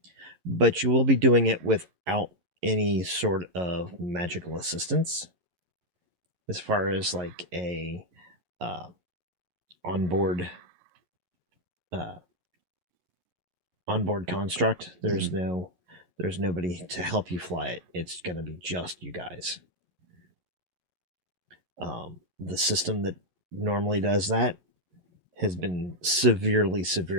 but you will be doing it without any sort of magical assistance, as far as like a onboard construct. There's nobody to help you fly it. It's going to be just you guys. The system that normally does that has been severely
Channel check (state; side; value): late; left; 11 ms